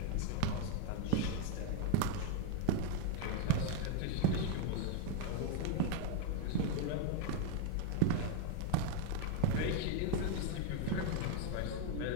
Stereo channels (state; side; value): different; both; correlation 0.01